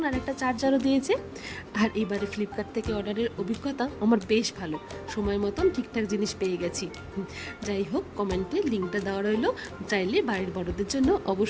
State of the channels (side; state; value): both; identical; correlation 1.00